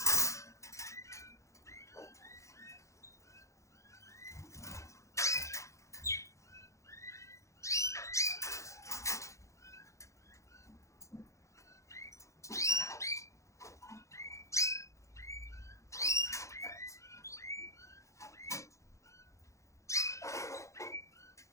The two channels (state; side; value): late; right; 0.15 ms